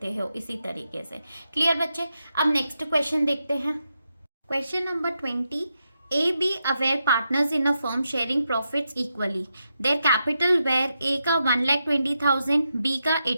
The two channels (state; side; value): inverted; both; correlation -0.85